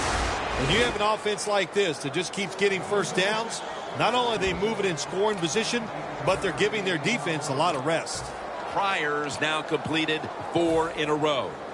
When you have an offense like this that just keeps getting first downs, not only are they moving in scoring position, but they're giving their defense a lot of rest. Pryor's now completed 4 in a row.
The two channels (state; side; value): identical; both; correlation 1.00